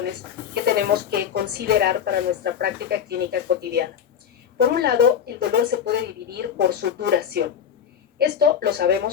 que tenemos que considerar para nuestra práctica clínica cotidiana. Por un lado, el dolor se puede dividir por su duración. Esto lo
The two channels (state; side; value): quieter; right; 8.3 dB